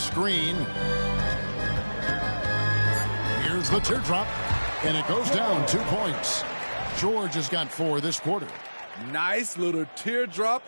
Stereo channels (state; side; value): inverted; both; correlation -1.00